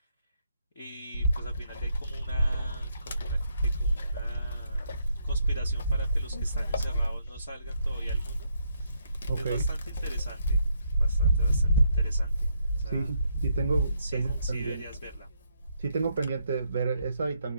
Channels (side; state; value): both; inverted; correlation -0.75